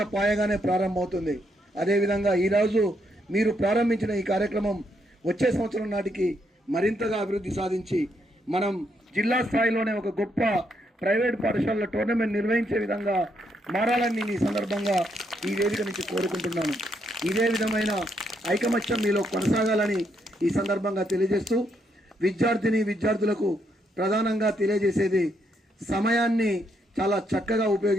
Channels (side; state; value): both; normal; correlation 0.76